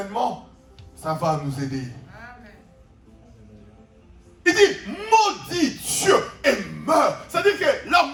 ça va nous aider. Il dit, maudit Dieu et meurt. C'est-à-dire que la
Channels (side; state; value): both; identical; correlation 1.00